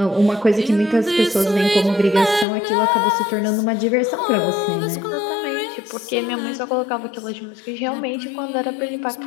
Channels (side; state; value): right; drops out; at 2.5 s